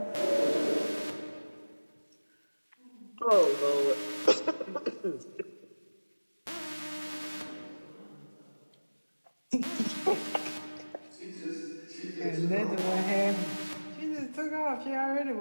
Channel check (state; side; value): inverted; both; correlation -1.00